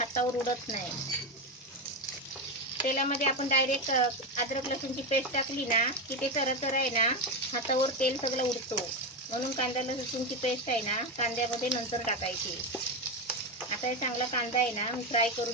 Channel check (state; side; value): normal; both; correlation 0.13